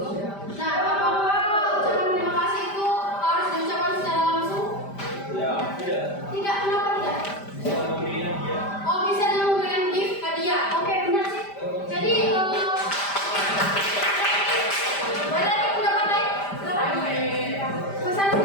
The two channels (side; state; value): right; late; 5.1 ms